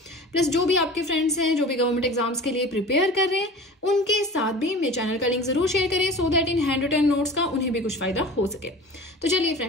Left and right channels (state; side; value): normal; both; correlation 0.38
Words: प्लस जो भी आपके फ्रेंड्स हैं जो भी गवर्नमेंट एग्जाम्स के लिए प्रिपेयर कर रहे हैं, उनके साथ भी मेरे चैनल का लिंक जरूर शेयर करें, सो दैट इन हैंड रिटन नोट्स का उन्हें भी कुछ फायदा हो सके। तो चलिए